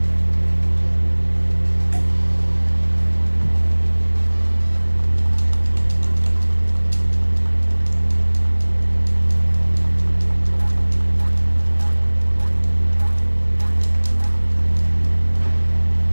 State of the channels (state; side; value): inverted; both; correlation -1.00